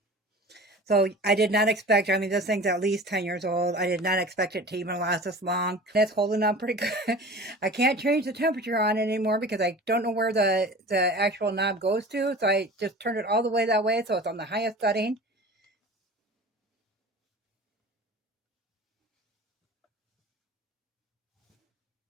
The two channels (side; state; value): both; normal; correlation 0.39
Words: So I did not expect, I mean, this thing's at least 10 years old. I did not expect it to even last this long. It's holding up pretty good. I can't change the temperature on it anymore because I don't know where the actual knob goes to. So I just turned it all the way that way. So it's on the highest setting.